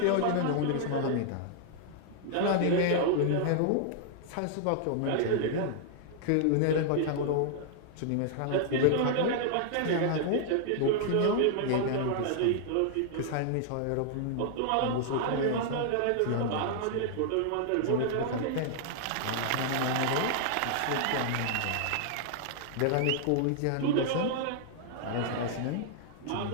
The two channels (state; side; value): different; both; correlation -0.01